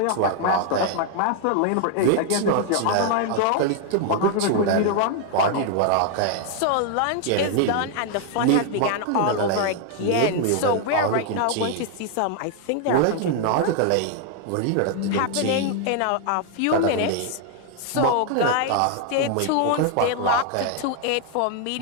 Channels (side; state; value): both; different; correlation 0.00